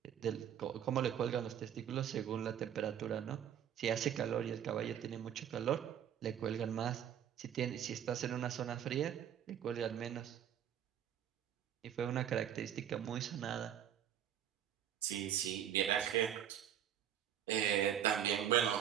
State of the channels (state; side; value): quieter; left; 9.8 dB